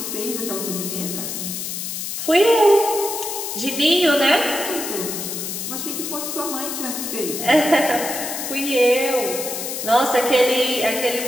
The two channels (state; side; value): noise; left; hiss, 5 dB below the sound